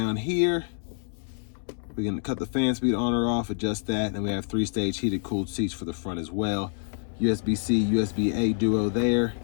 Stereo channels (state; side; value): silent; right; 60 dB below the other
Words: here. We can cut the fan speed on or off, adjust that, and we have 3-stage heated cooled seats for the front as well. USB-C, USB-A duo there.